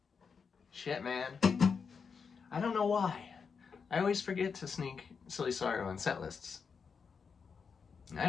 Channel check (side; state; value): right; quieter; 5.8 dB